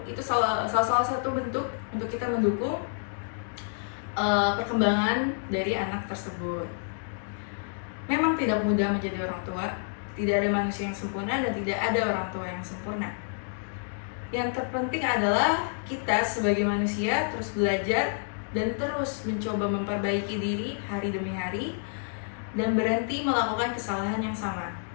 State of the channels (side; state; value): right; silent; digital silence